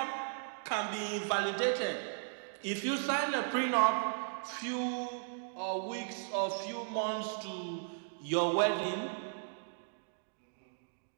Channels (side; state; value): left; silent; digital silence